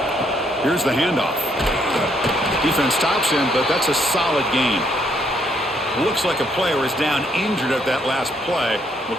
Here's the handoff. Defense stops him, but that's a solid gain. Looks like a player is down injured at that last play.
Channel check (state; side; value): normal; both; correlation 0.71